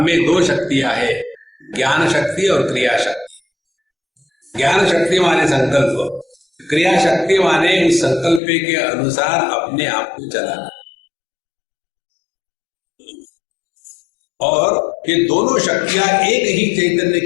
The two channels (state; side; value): drops out; right; at 8.4 s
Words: में दो शक्तियां हैं, ज्ञान शक्ति और क्रिया शक्ति। ज्ञान शक्ति माने संकल्प, क्रिया शक्ति माने उस संकल्प के अनुसार अपने आप को चलाना। और ये दोनों शक्तियां एक ही चैतन्य